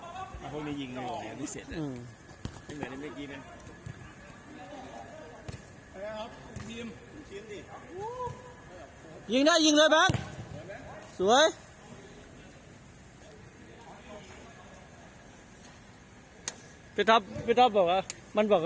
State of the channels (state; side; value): identical; both; correlation 1.00